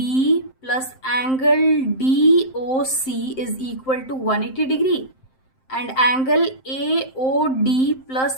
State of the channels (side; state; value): right; late; 7.6 ms